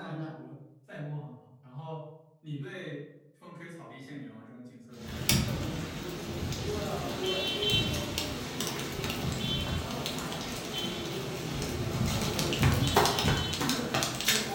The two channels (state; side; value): identical; both; correlation 1.00